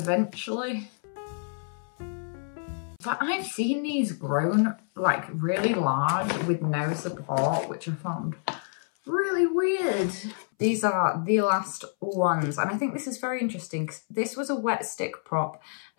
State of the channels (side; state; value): right; silent; 59 dB below the other